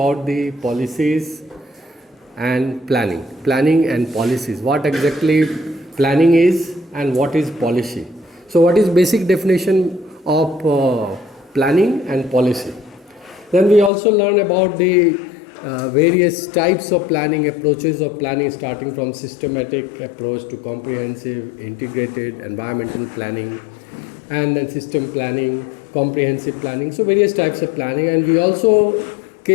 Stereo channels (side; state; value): right; drops out; at 13.9 s